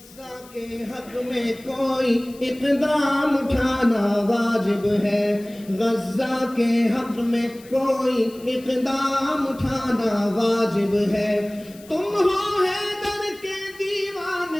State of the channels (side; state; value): left; noise; hiss, 23 dB below the sound